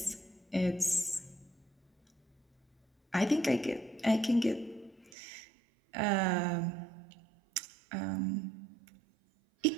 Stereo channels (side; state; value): left; drops out; at 5.1 s